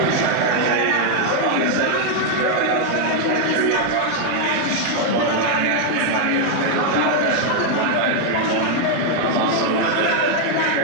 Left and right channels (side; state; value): both; different; correlation 0.00